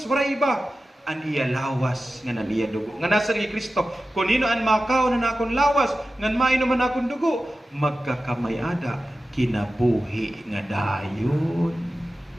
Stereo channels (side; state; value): both; normal; correlation 0.94